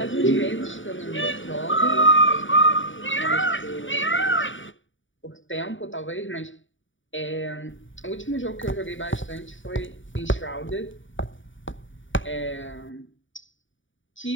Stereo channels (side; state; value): right; late; 0.56 ms